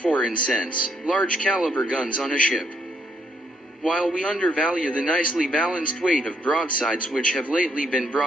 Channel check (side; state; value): both; normal; correlation 0.72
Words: in sense, large caliber guns on a ship. While we undervalue the nicely balanced weight of broadsides which have lately been